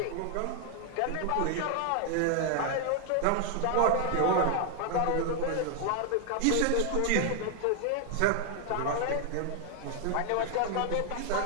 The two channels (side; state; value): both; different; correlation 0.00